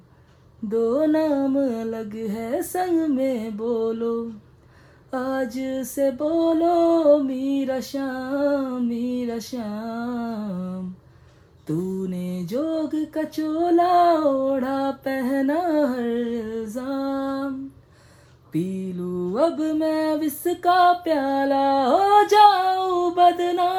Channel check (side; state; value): both; identical; correlation 1.00